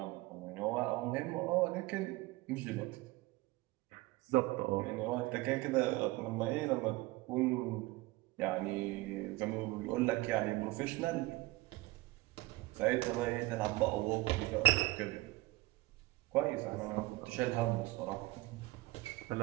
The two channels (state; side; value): quieter; left; 19.8 dB